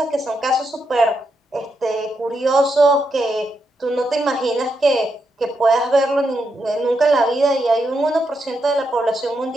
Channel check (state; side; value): normal; both; correlation 0.83